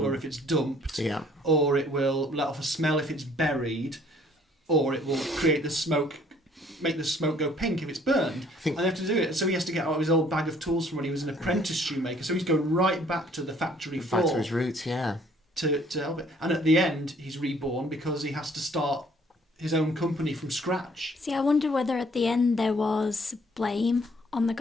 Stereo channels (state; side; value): normal; both; correlation 0.60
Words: if it's dumped, or it will let off a smell if it's buried, or it will create the smoke. Make the smoke go pink if it's burned, and they have to do it. So he has to get out his old bag of tools from when he was an apprentice shoemaker. So he's going right back to the factory floor, back to his roots, to help it. And at the end, he's reborn because he has to start his own company from scratch. See, I wonder whether at the end there was blame on the